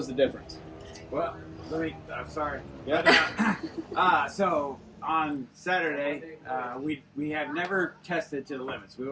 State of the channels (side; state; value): both; identical; correlation 1.00